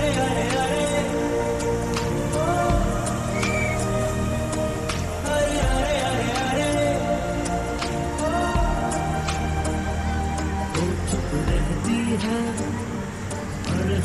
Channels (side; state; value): both; identical; correlation 1.00